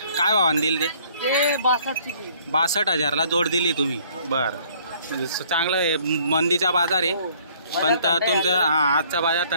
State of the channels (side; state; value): both; inverted; correlation -0.59